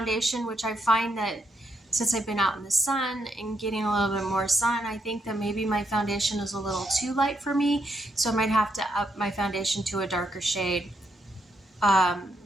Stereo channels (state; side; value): normal; both; correlation 0.78